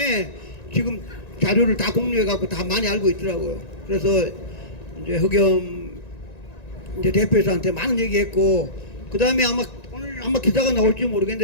지금 자료를 다 공유해갖고 다 많이 알고 있더라고요. 그래서 이제 허겸 이제 대표이사한테 많은 얘기했고, 그 다음에 오늘 아마 기사가 나올지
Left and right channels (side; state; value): right; late; 1.9 ms